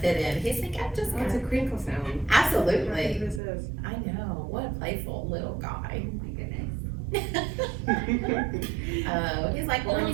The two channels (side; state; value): left; drops out; at 3.4 s